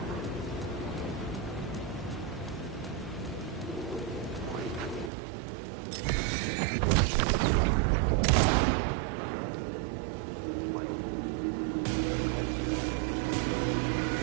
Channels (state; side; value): drops out; left; at 5.1 s